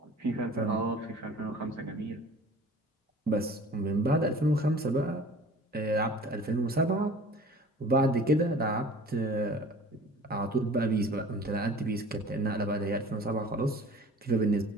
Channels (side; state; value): both; normal; correlation 0.45